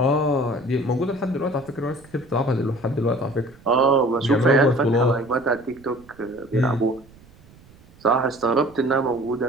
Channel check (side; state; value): right; noise; rumble, 25 dB below the sound